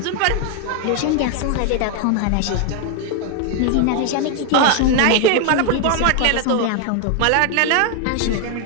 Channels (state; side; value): different; both; correlation 0.01